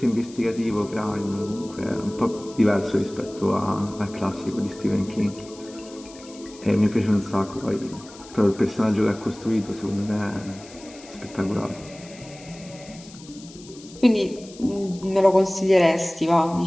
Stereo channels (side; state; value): left; noise; hiss, 20 dB below the sound